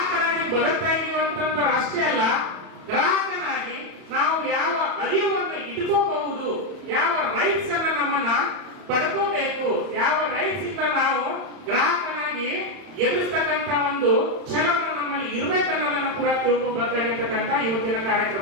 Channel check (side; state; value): left; late; 31 ms